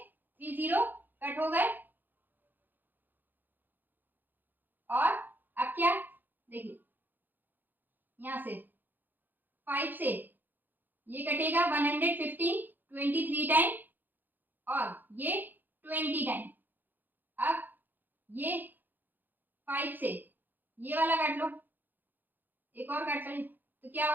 30 कट हो गए, और अब क्या देखिए यहां से 5 से ये कटेगा 115 23 टाइम, और ये 20 टाइम। अब ये 5 से ये वाला काट लो, एक और काट लो, तो क्या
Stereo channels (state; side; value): late; left; 0.089 ms